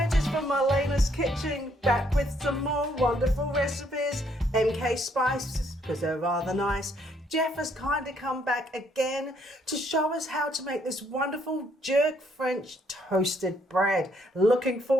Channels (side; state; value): both; normal; correlation 0.69